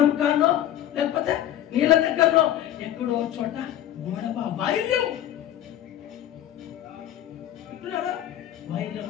కాన్నో లేకపోతే నీళ్ళ దగ్గరలో ఎక్కడో చోట గొడవ, వైర్యం. వైర్యం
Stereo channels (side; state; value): right; quieter; 11.9 dB